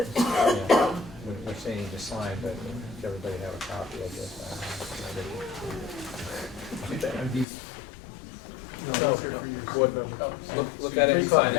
Yeah, we're saying to sign, but everybody have a copy, I guess. Are these? No, board member. Look at it and sign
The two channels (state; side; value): drops out; right; at 7.5 s